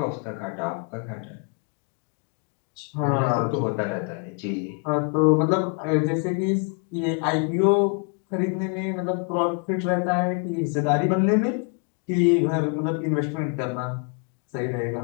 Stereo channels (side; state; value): right; quieter; 38.4 dB